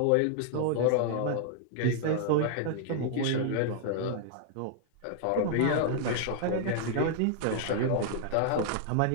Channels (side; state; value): both; different; correlation -0.01